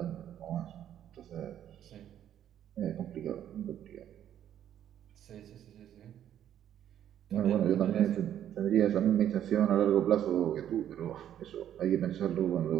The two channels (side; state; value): left; quieter; 10.6 dB